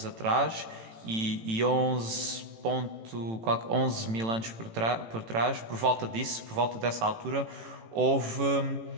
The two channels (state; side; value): late; left; 18 ms